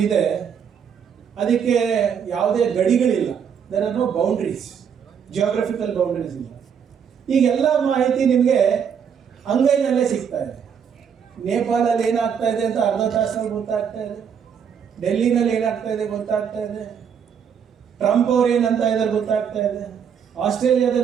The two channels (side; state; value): left; quieter; 7.5 dB